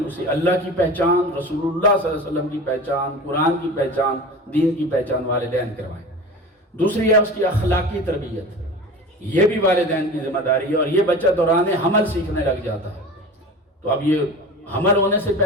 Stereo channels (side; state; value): both; normal; correlation 0.34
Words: اسے اللہ کی پہچان، رسول اللہ صلی اللہ علیہ وسلم کی پہچان، قرآن کی پہچان، دین کی پہچان والدین کروائیں۔ دوسری ہے اس کی اخلاقی تربیت، یہ بھی والدین کی ذمہ داری ہے، اور یہ بچہ دوران حمل سیکھنے لگ جاتا ہے۔ تو اب یہ حمل ہونے سے